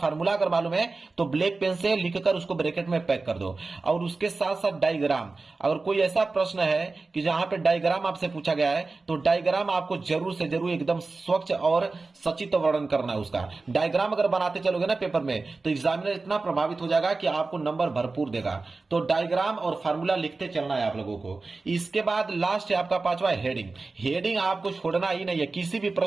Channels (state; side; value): quieter; left; 3.7 dB